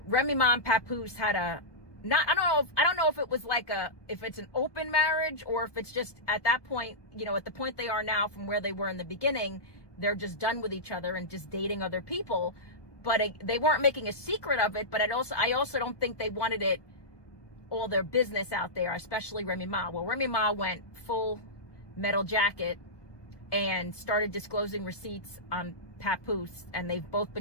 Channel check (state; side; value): late; right; 1.2 ms